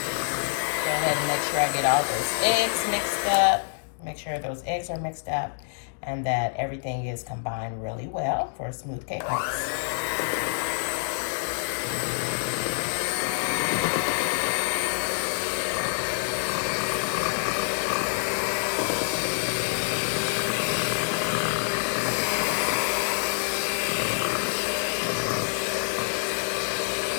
Go ahead and make sure I get all those eggs mixed up. Make sure those eggs are mixed up and that everything is combined really well for a smooth cake mix.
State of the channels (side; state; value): right; silent; digital silence